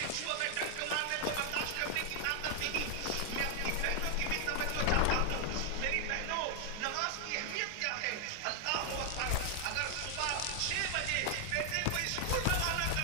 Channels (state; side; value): different; both; correlation 0.00